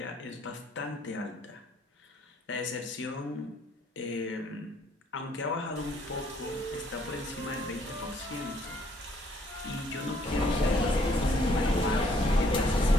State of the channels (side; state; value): both; normal; correlation 0.65